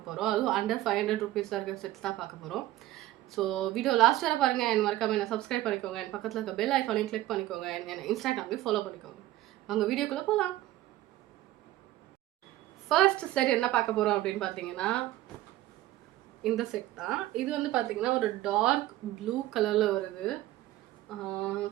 போகிறோம். அதுவும் அண்டர் 500 ருபீஸில் இருக்கிற செட்ஸ் தான் பார்க்க போகிறோம். ஸோ வீடியோ லாஸ்ட் வரை பாருங்கள். என் மறக்காம என்ன சப்ஸ்கிரைப் பண்ணிக்கோங்க. என் பக்கத்தில் இருக்க பெல் ஐக்கானையும் கிளிக் பண்ணிக்கோங்க. என்ன இன்ஸ்டாகிராம்லேயும் ஃபாலோ பண்ணிக்கோங்க. அவங்க வீடியோக்குள்ளே போகலாம். ஃபர்ஸ்ட் செட் என்ன பார்க்க போகிறோம் அப்படின்னு பார்த்தீங்கன்னா, இந்த செட் தான். இது வந்து பார்த்தீங்கன்னா ஒரு டார்க் ப்ளூ கலரில் வருது.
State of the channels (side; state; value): left; quieter; 15.6 dB